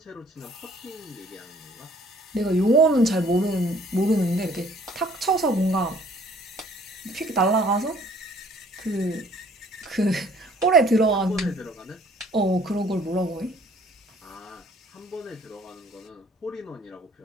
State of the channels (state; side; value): normal; both; correlation 0.57